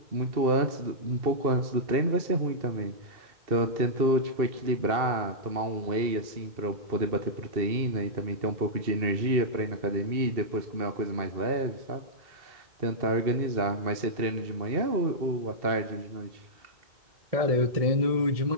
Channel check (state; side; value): late; left; 2.7 ms